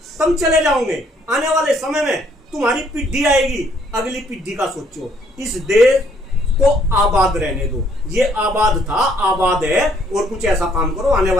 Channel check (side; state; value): both; normal; correlation 0.65